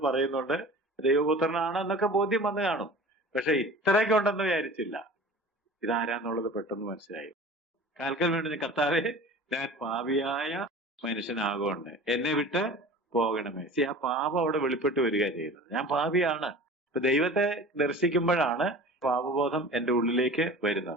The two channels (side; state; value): both; normal; correlation 0.40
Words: പറയുന്നുണ്ട്, ദൈവപുത്രനാണ് എന്നൊക്കെ ബോധ്യം വന്നു കാണും. പക്ഷെ ഇത്രയൊക്കെ ഉണ്ടെന്ന് വിചാരിച്ചില്ല. ഇതാരാന്നുള്ളത് പെട്ടെന്ന് മനസ്സിലായി. കാൽക്കൽ വീണ്, കർത്താവെ, ഞാൻ പാപിയായ മനുഷ്യനാകൊണ്ട് എന്നെ വിട്ട് പോകണമേ. ആ പാപം അവിടെ വെളിപ്പെട്ട് വരിക ചെയ്യുന്നത്. ഞാൻ പാപിയാണ്. ഇപ്പൊ ദൈവത്തെ ദർശിക്കുമ്പോഴാണ് പാപബോധം എന്റെ ഉള്ളിലേക്ക്